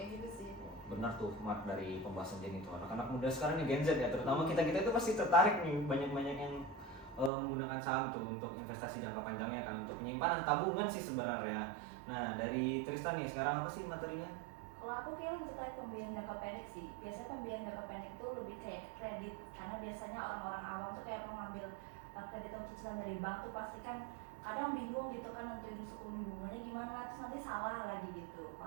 gitu sih. Benar tuh Mark dari pembahasan Jenny itu anak-anak muda sekarang nih Gen Z ya terutama kita itu pasti tertarik nih banyak yang menggunakan saham tuh untuk investasi jangka panjangnya kan untuk penyimpanan tabungan sih sebenarnya. Nah dari Tristan nih sekarang apa sih materinya? Kalau aku kira terkait pembiayaan jangka pendek sih, biasanya pembiayaan jangka pendek itu lebih kayak kredit karena biasanya orang-orang awam tuh kayak mau ngambil kredit atau cicilan dari bank tuh pasti kan kadang bingung gitu kan untuk suku bunganya gimana terus nanti salah lagi gitu,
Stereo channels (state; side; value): drops out; left; at 7.3 s